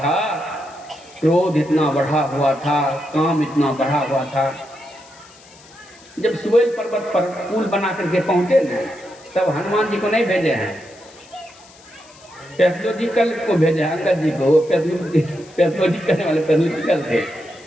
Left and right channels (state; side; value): noise; left; hiss, 24 dB below the sound